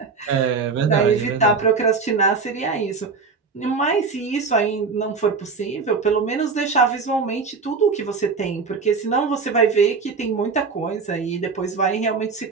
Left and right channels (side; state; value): left; quieter; 4.8 dB